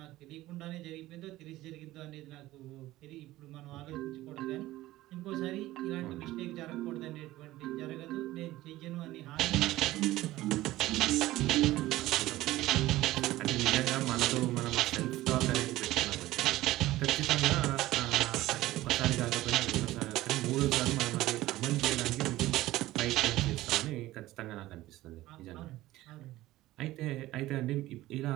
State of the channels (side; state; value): left; quieter; 16.6 dB